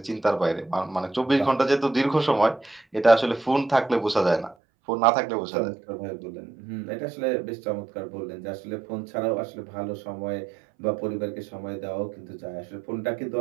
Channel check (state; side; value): drops out; left; at 4.5 s